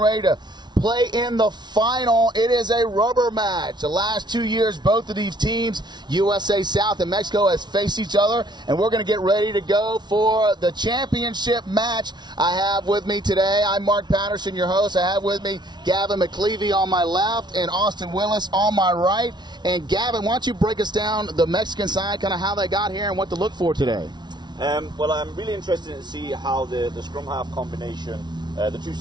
ready to play in the final. It is a rubber match. The last 2 years, both of these teams, USA South and Mexico, has faced each other, and we're going to get ready to go for the championship match. I have with me today, I'm Mark Patterson, your host. I have with me Gavin McLeavy on my left and Austin Willis on my right. And Gavin, why don't you break us down the Mexican side, kind of how they got here and what to look for today? Well, I'm really interested to see how the scrum half combination, the two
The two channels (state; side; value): late; left; 0.20 ms